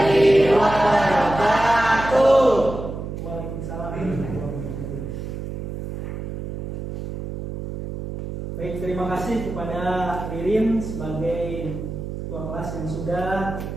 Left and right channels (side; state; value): right; noise; hum, 7 dB below the sound